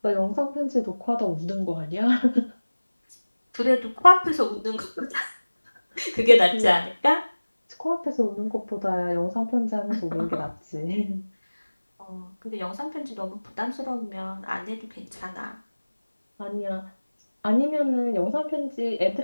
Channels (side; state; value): both; inverted; correlation -1.00